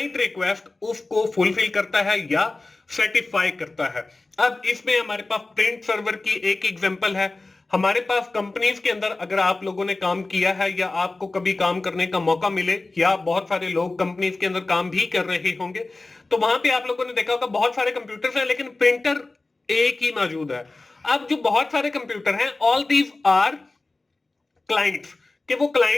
request उसको फुलफिल करता है या सेटिस्फाई करता है। अब इसमें हमारे पास प्रिंट सर्वर की एक एग्जांपल है। हमारे पास कंपनीज के अंदर अगर आप लोगों ने काम किया है या आपको कभी काम करने का मौका मिले, या बहुत सारे लोग कंपनीज के अंदर काम भी कर रहे होंगे, तो वहां पे आप लोगों ने देखा होगा बहुत सारे कंप्यूटर्स हैं लेकिन प्रिंटर एक ही मौजूद है। अब जो बहुत सारे कंप्यूटर हैं, ऑल दीज आर क्लाइंट्स, कि वो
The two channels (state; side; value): quieter; right; 3.3 dB